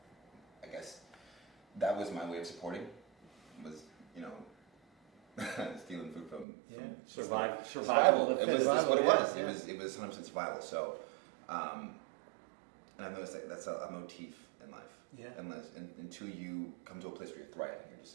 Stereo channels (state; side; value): drops out; left; at 6.5 s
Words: I guess that was my way of supporting. Was, you know, stealing food from Survival. It was that's what it was. Yeah. It was 100% survival. So, and I've noticed that that's a motif in life. Yeah. Until you come to a place where you're thriving, you're just